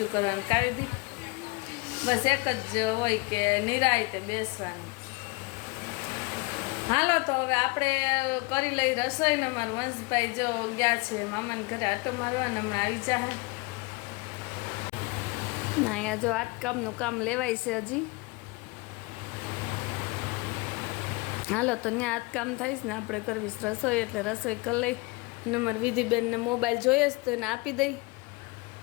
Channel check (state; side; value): quieter; right; 26.1 dB